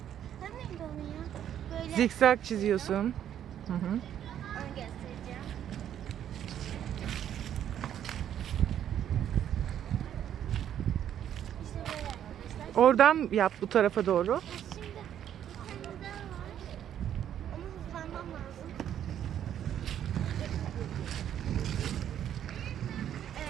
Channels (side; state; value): left; quieter; 10.2 dB